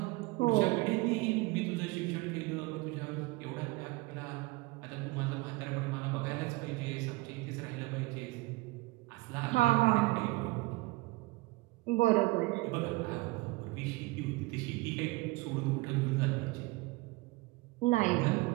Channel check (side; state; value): left; quieter; 22.5 dB